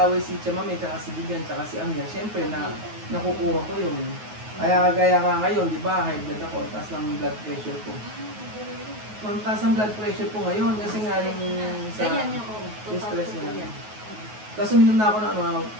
si Chamame, tsaka si Vivian, tsaka si Amya, syempre nakukuha ko yun. Kaya nga ngayon, di ba, high blood ako, taas ng blood pressure ko. Ang taas ng blood pressure ko ngayon kasi nga yung sa Ganyan yung oo. yung stress Total na. yan. Tapos uminom na ako ng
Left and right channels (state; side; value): late; left; 9.4 ms